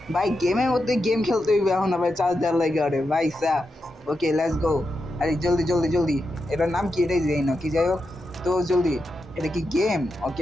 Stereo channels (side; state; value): both; normal; correlation 0.87